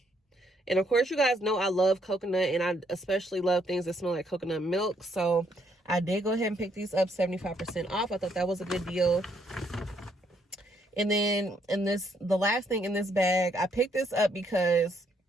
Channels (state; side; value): normal; both; correlation 0.71